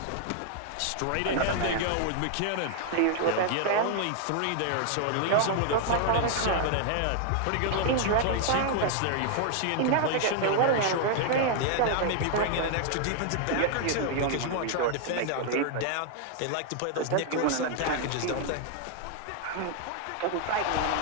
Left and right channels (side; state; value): both; different; correlation 0.00